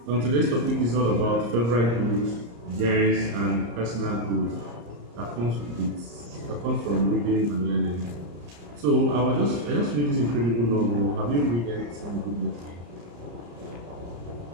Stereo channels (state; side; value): late; left; 34 ms